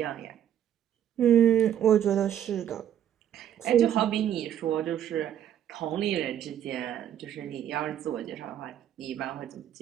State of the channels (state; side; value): quieter; left; 10.3 dB